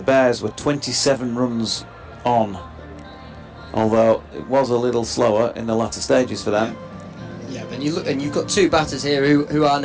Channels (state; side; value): identical; both; correlation 1.00